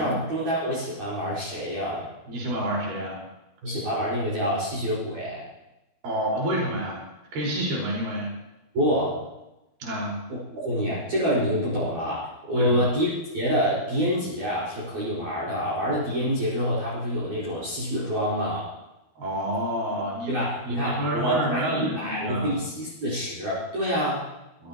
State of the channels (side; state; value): left; late; 12 ms